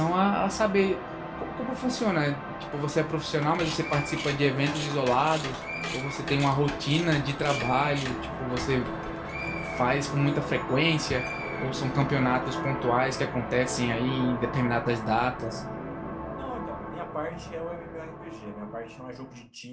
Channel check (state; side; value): identical; both; correlation 1.00